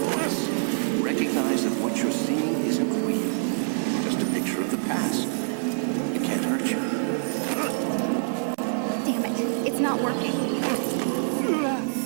Recognize that what you're seeing isn't real. Just a picture of the past. It can't hurt you. Damn it, it's not working.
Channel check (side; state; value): left; silent; 61 dB below the other